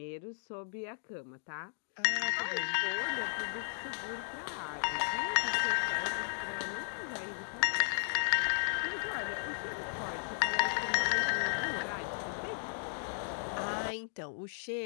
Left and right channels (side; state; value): right; silent; digital silence